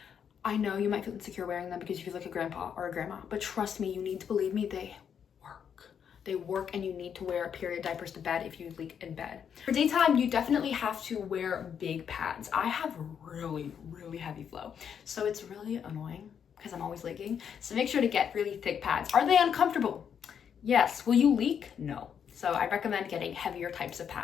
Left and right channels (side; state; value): right; quieter; 7.8 dB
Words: I know you might feel insecure wearing them because you feel like a grandpa or a grandma, but trust me, you need to believe me, they work. They work, and you need to wear period diapers to bed if you leak in bed. For daytime, you definitely have to wear big pads. I have really heavy flow, so it's really annoying because I'm always leaking. So make sure to get really thick pads. Are they uncomfortable? Yes. Will you leak? No. So I recommend getting heavier types of